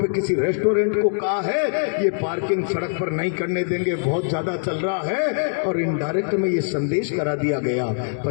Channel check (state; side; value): silent; right; digital silence